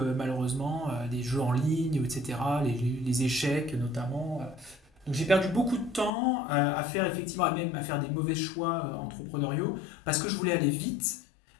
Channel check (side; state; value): right; drops out; at 6.1 s